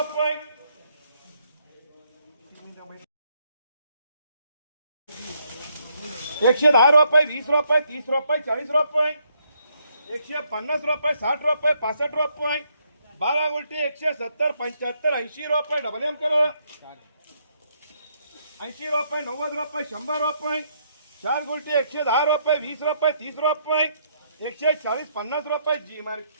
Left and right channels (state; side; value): inverted; both; correlation -0.73